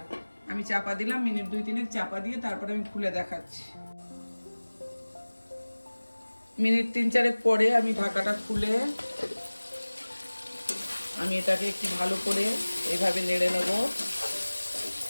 আমি চাপা দিলাম, মিনিট 2-3 চাপা দিয়ে তারপরে আমি খুলে দেখাচ্ছি। মিনিট 3-4 পরে আমি ঢাকাটা খুলে আমি এটাকে একটু ভালো করে এইভাবে নেড়ে নেব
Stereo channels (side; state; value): both; inverted; correlation -1.00